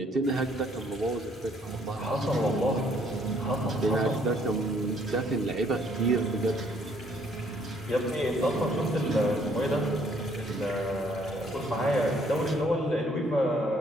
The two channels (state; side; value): normal; both; correlation 0.64